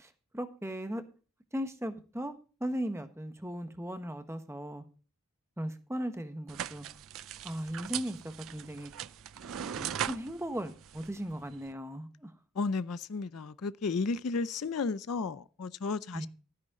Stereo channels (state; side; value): normal; both; correlation 0.60